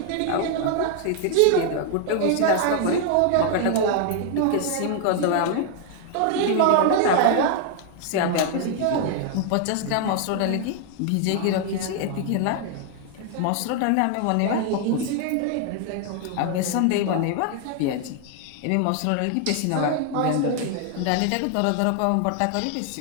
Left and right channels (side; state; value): both; different; correlation 0.00